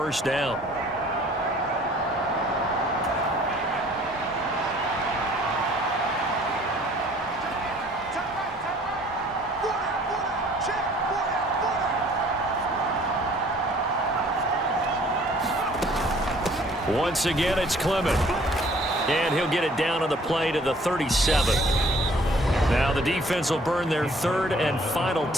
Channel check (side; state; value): both; normal; correlation 0.56